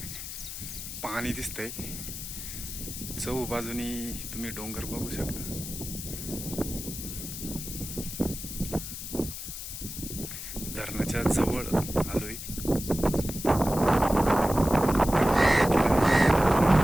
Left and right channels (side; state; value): left; noise; hiss, 8 dB below the sound